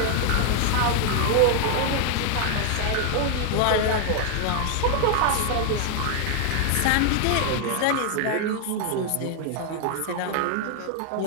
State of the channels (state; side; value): different; both; correlation 0.00